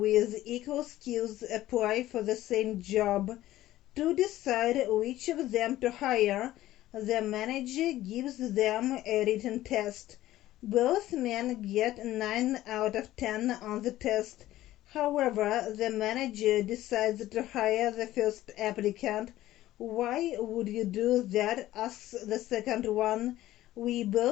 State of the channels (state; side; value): quieter; right; 14.9 dB